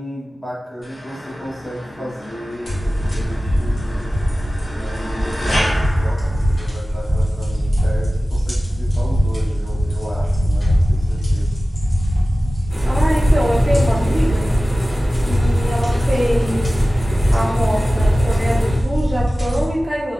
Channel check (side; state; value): both; normal; correlation 0.96